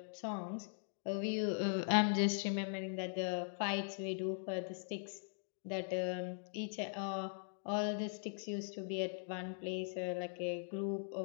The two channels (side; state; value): right; silent; digital silence